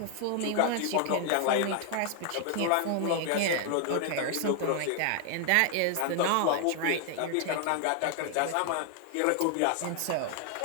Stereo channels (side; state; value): both; different; correlation 0.00